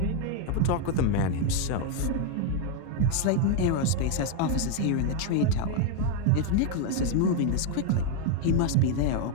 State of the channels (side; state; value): both; different; correlation 0.01